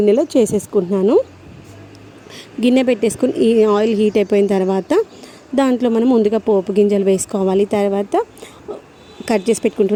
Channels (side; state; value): both; identical; correlation 1.00